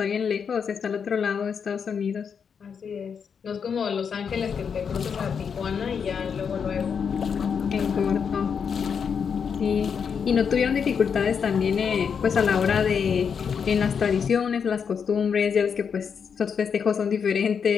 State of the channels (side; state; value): right; quieter; 6.7 dB